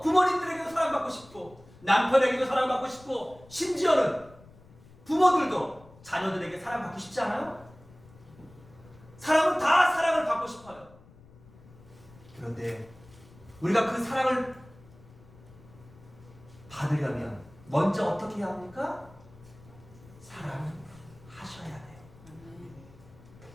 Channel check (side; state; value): left; noise; rumble, 23 dB below the sound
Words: 부모님들에게도 사랑받고 싶고, 남편에게도 사랑받고 싶고, 심지어는 부모들도 자녀들에게 사랑받고 싶지 않아요? 사람은 다 사랑을 받고 싶어요. 그런데 우리가 그 사랑을 받으려면 먼저 어떻게 해야 합니까? 사랑하셔야 돼요.